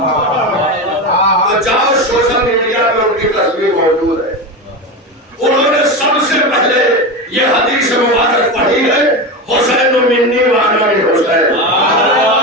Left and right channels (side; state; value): both; normal; correlation 0.20